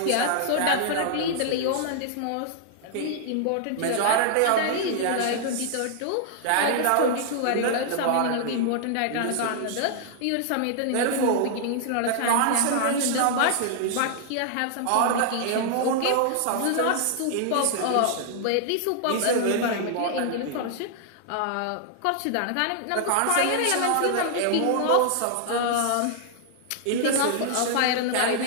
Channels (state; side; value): different; both; correlation -0.01